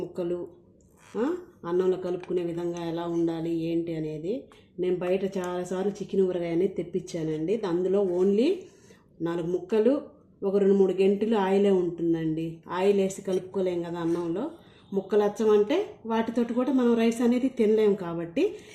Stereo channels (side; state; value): both; identical; correlation 1.00